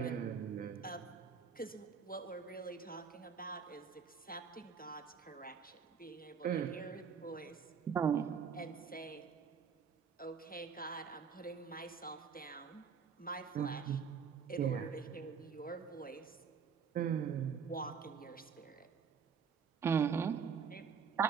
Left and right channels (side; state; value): left; quieter; 6.5 dB